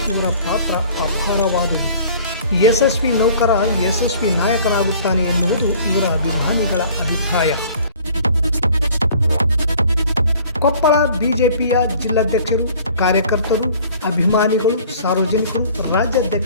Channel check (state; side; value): inverted; both; correlation -0.51